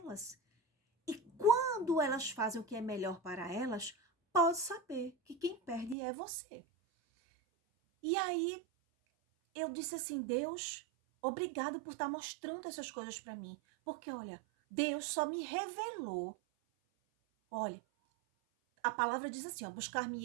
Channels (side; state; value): left; drops out; at 6.0 s